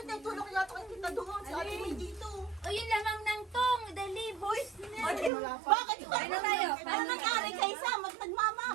naitulong ko yata kay Tita Doon. Si Ate May dito. O yun lamang ng tong, dali boys. Bakit ito? Kain na tayo. Ano nangyari kay Sam? Nagmama.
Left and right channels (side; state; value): left; drops out; at 5.3 s